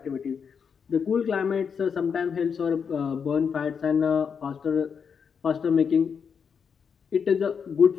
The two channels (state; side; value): quieter; right; 6.6 dB